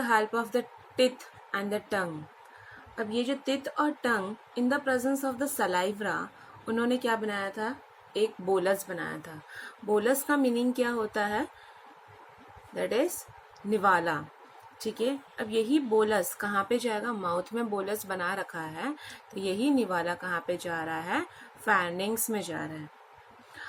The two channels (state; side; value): identical; both; correlation 1.00